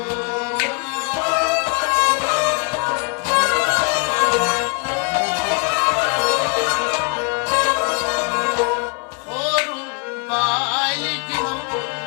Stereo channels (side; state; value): right; quieter; 35.8 dB